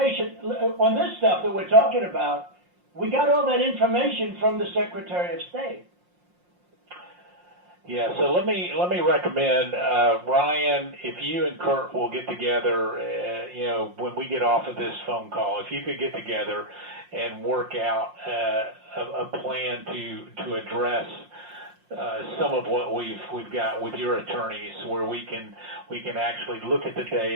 on this stuff that we're talking about. We got all that information from the Secretary of State. Yeah, so let me recommend, Ryan, if you and Kurt will get together, when we get off of this phone call, if you could get together and work out a plan to address some of what we've got with your attorneys, where we can actually look at the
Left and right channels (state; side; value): late; left; 5.6 ms